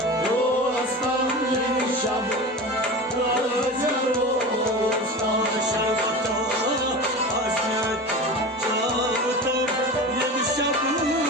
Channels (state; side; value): normal; both; correlation 0.30